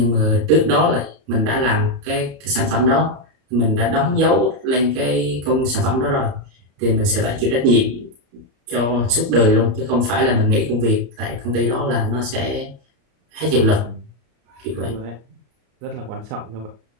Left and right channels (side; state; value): left; late; 33 ms